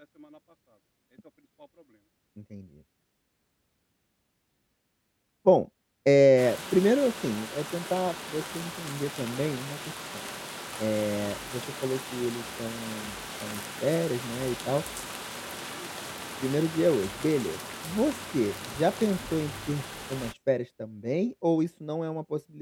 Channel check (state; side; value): identical; both; correlation 1.00